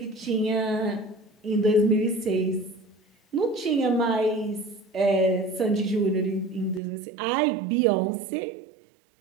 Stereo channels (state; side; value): drops out; left; at 6.8 s